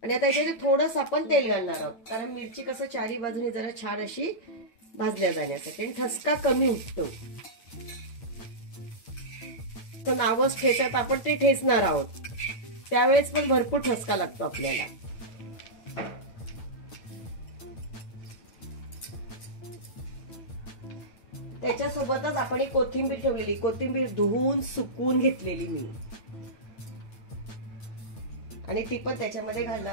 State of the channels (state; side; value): late; right; 9.1 ms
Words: आणि आता याच्यात थोडंसं आपण तेल घालणार आहोत, कारण मिरची कसं चारी बाजूने जरा छान अशी भाजल्या जाण्यासाठी आणि ठसका कमी उठतो. तर नावच ठेचत आपण ते ठेचणार आहोत, त्यावेळेस पण भरपूर ठसका लागतो आपल्याला. त्याच्यासोबतच आपण एक कोथिंबीर ठेवलेली, कोथिंबीर धुवून सुकवून घेतलेली मी, आणि ती पण त्याच्यामध्ये